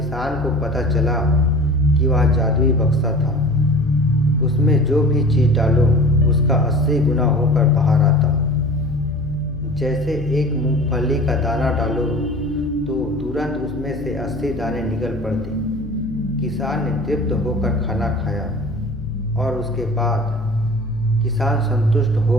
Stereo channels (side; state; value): left; noise; hum, 13 dB below the sound